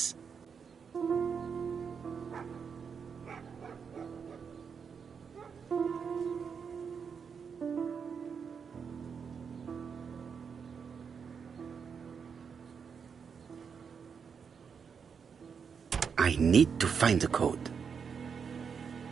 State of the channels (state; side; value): quieter; left; 6.4 dB